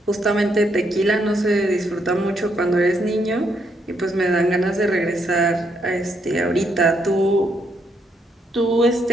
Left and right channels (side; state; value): both; normal; correlation 0.75